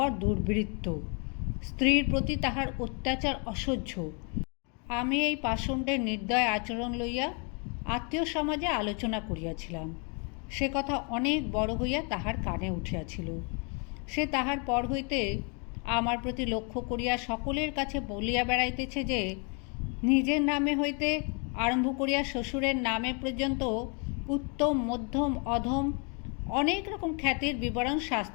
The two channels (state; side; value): quieter; right; 35.8 dB